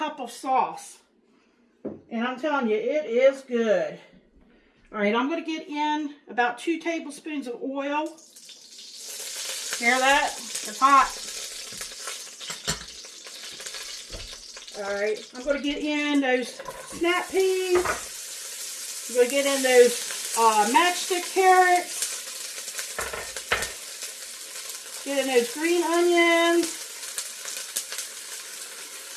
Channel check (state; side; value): identical; both; correlation 1.00